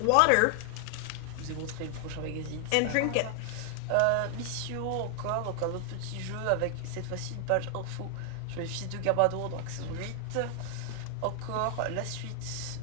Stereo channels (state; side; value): different; both; correlation 0.00